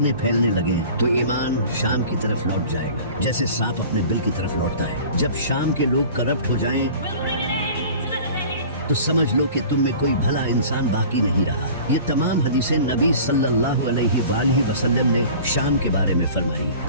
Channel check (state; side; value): inverted; both; correlation -0.42